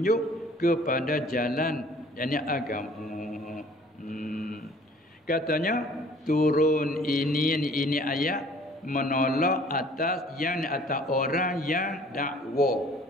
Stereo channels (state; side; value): normal; both; correlation 0.53